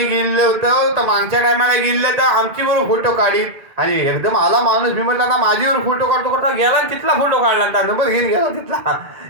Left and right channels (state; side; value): late; left; 1.8 ms